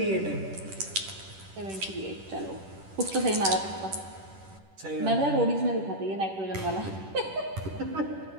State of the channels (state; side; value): late; left; 10 ms